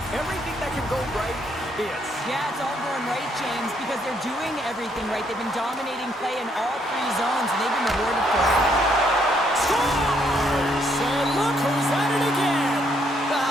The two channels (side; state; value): both; normal; correlation 0.71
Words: everything that can go right is. Yeah, it's all going right, James, because they're doing everything right. They've been dominating play in all three zones, and they've been rewarded for it. Scores! And look who's at it again.